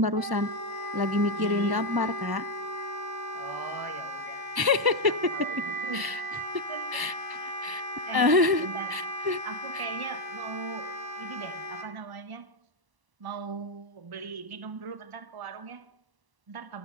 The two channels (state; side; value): late; left; 1.0 ms